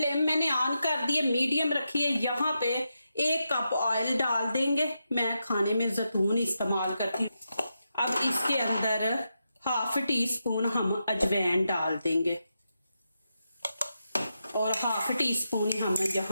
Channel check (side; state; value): both; inverted; correlation -0.86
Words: मैंने ऑन कर दी है, मीडियम रखी है। यहाँ पे 1 कप ऑयल डाल देंगे। मैं खाने में जैतून इस्तेमाल करती हूँ। अब इसके अंदर हाफ टी स्पून हम अजवाइन डाल देंगे और हाफ टी स्पून हम